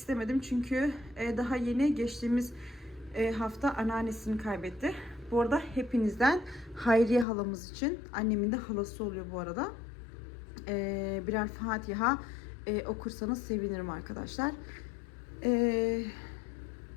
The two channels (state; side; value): drops out; right; at 7.2 s